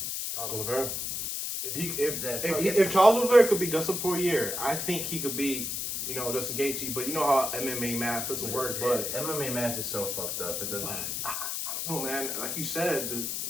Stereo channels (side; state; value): left; noise; hiss, 3 dB below the sound